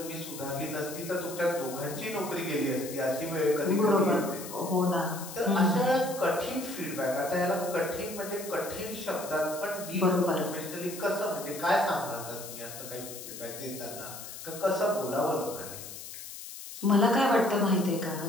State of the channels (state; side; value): noise; left; hiss, 11 dB below the sound